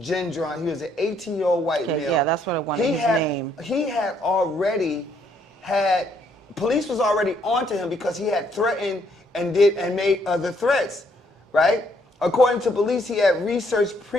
He was an 18-year-old white male. Yeah, that's what I wanted, his name. He had already had, police was already onto him because he had threatened and made other threats, right? According to police, he had researched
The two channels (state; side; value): normal; both; correlation 0.69